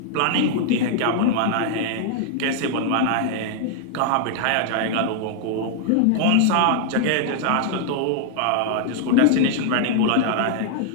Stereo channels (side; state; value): both; different; correlation 0.00